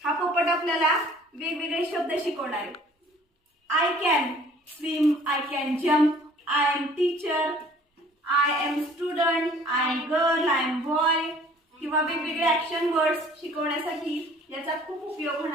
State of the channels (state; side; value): normal; both; correlation 0.53